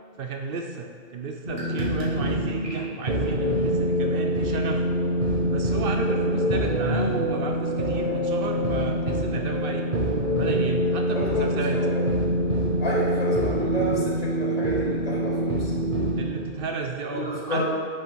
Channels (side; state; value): left; late; 2.6 ms